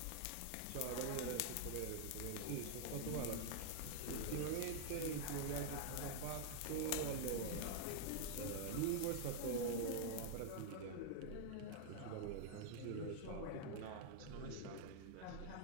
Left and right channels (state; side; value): different; both; correlation 0.00